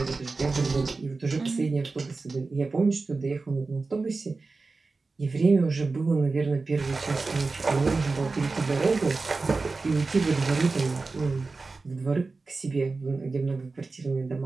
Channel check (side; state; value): left; quieter; 3.9 dB